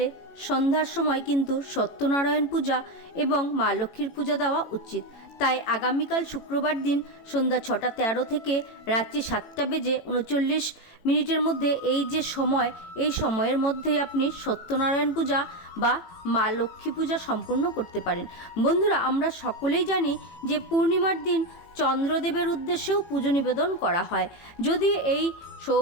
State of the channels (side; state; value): right; late; 18 ms